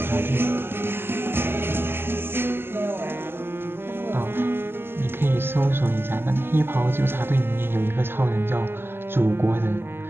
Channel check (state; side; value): late; left; 0.11 ms